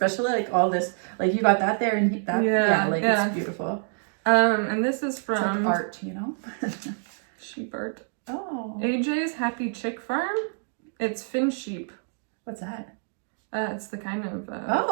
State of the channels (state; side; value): silent; left; 60 dB below the other